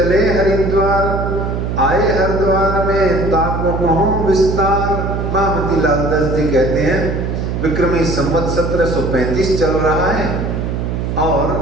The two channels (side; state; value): right; noise; hum, 2 dB below the sound